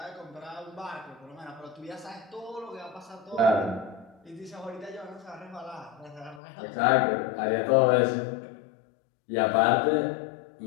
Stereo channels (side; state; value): right; drops out; at 6.4 s